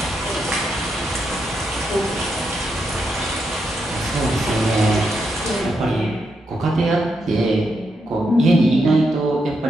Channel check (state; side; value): normal; both; correlation 0.82